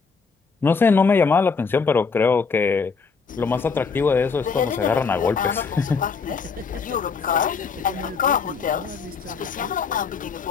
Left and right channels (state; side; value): quieter; right; 5.2 dB